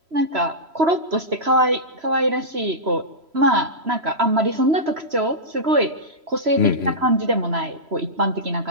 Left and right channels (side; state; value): left; late; 3.0 ms